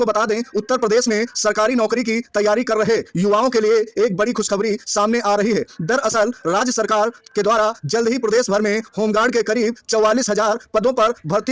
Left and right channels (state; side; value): identical; both; correlation 1.00